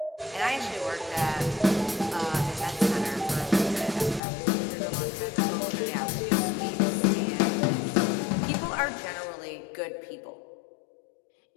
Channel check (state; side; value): drops out; right; at 4.2 s